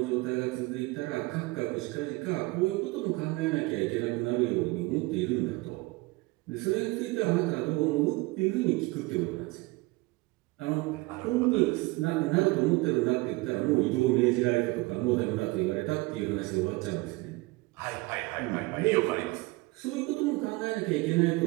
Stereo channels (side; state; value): left; quieter; 22.6 dB